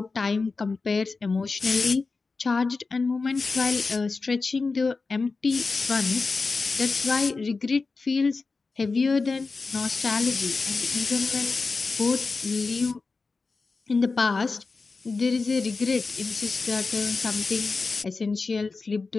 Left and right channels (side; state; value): right; quieter; 4.1 dB